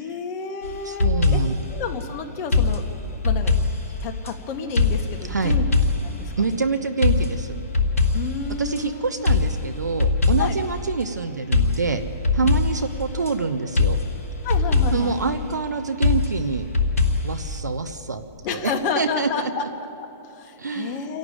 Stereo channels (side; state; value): both; inverted; correlation -0.50